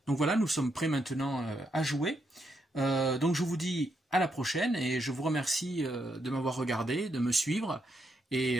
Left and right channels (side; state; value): both; normal; correlation 0.79